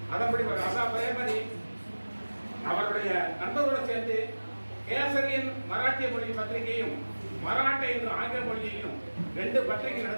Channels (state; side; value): inverted; both; correlation -1.00